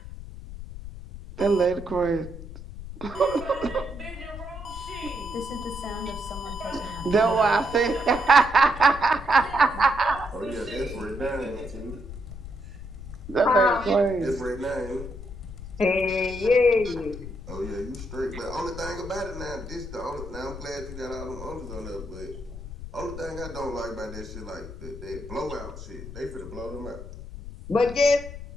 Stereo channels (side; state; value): left; noise; rumble, 11 dB below the sound